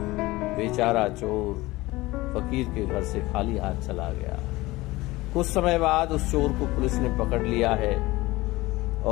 बेचारा चोर फकीर के घर से खाली हाथ चला गया। कुछ समय बाद उस चोर को पुलिस ने पकड़ लिया है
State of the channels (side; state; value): right; quieter; 19.8 dB